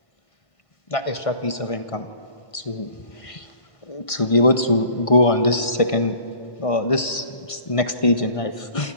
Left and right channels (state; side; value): late; right; 1.5 ms